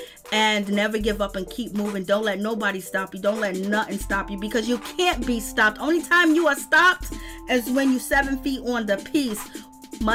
And never give up and keep moving. Don't let nobody stop you. Don't let nothing stop you, because you can't be stopped. Only time you are stopped is when you're 7 feet on the piece.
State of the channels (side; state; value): both; identical; correlation 1.00